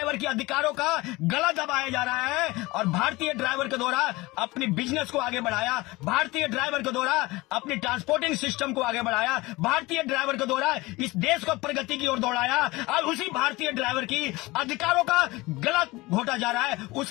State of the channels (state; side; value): quieter; right; 21.6 dB